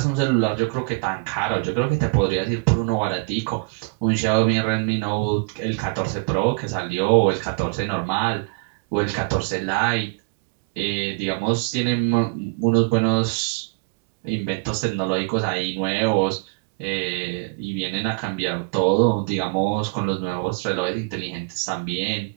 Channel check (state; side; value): quieter; left; 30.6 dB